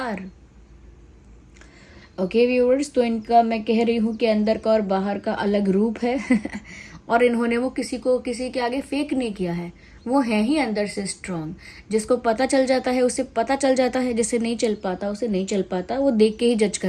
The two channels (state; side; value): identical; both; correlation 1.00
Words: Okay viewers, तो इनका मैं कह रही हूँ कि अंदर का और बाहर का अलग रूप है और इन्होंने वो किसी के आगे फेक नहीं किया है, वो है ही अंदर से स्ट्रांग। जिसको पता चल जाता है उसे पता चल जाता है, जिसे नहीं चल पाता उसे नहीं चल पाता, वो देख के ही जज